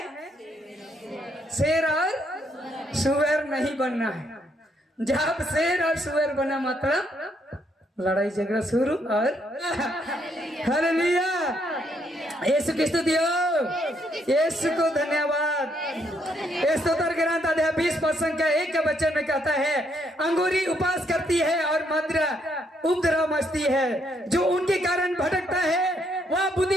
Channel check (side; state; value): both; normal; correlation 0.73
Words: शेर और सुअर नहीं बनना है। जब शेर और सुअर बना मतलब लड़ाई झगड़ा शुरू। और हालेलुया, यीशु की स्तुति हो, यीशु को धन्यवाद। स्तोत्र ग्रंथ अध्याय 20 का 1 के वचन में कहता है, अंगूरी उपास करती है और मदिरा उपद्रव मचती है, जो उनके कारण भटकता है वह